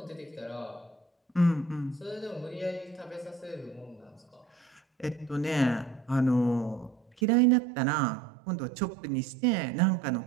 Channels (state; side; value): drops out; left; at 7.2 s